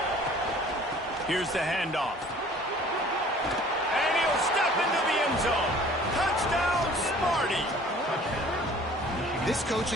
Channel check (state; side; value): normal; both; correlation 0.51